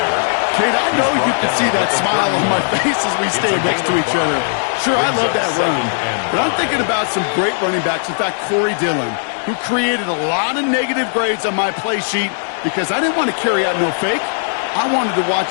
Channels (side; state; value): right; silent; digital silence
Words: Kate, I know you can see that smile on my face as we stand next to each other. Sure, I love that run. But I'm thinking about some great running backs. In fact, Corey Dillon, who created a lot of negative grades on my play sheet because I didn't want to carry out no fake. I wanted to watch